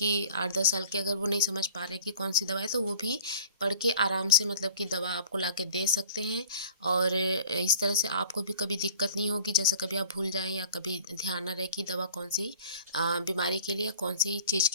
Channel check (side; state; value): both; inverted; correlation -0.46